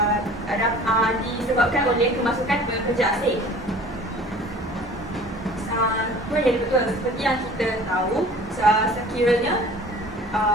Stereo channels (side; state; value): both; normal; correlation 0.46